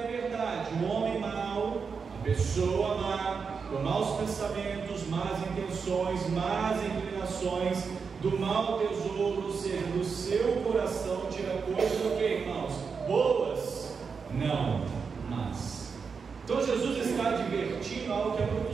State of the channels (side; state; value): left; quieter; 5.6 dB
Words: verdade. O homem mau, a pessoa má, com maus pensamentos, más intenções, más inclinações, do mau tesouro, ou seja, do seu coração tira coisas o que, irmãos? Boas? Não, mas. Então Jesus está advertindo algo que é